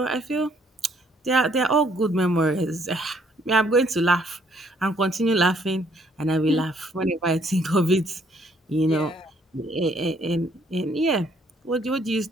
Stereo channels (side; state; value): both; normal; correlation 0.66